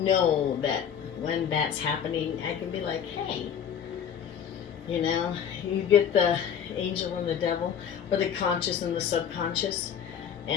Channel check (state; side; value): quieter; right; 8.3 dB